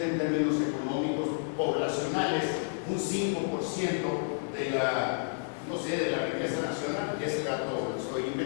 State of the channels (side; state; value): right; silent; 57 dB below the other